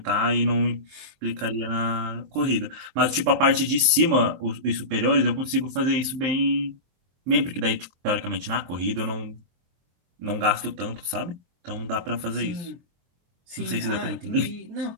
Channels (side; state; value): left; late; 23 ms